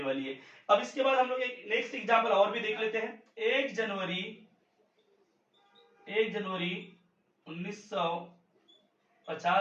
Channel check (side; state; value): both; identical; correlation 1.00